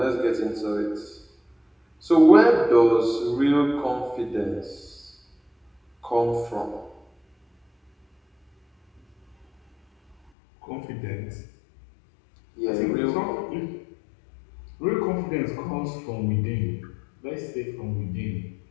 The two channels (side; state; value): right; drops out; at 10.2 s